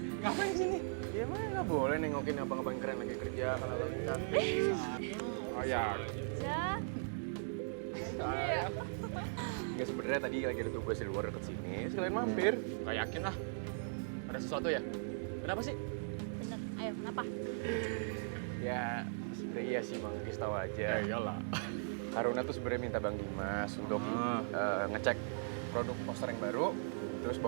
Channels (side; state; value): left; silent; digital silence